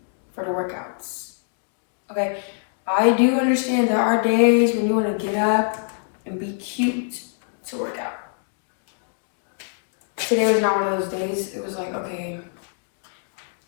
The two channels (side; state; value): right; silent; 62 dB below the other